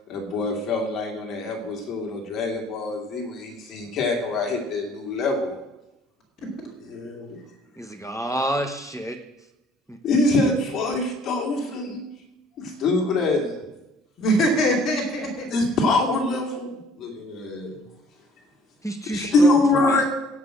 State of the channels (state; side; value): normal; both; correlation 0.56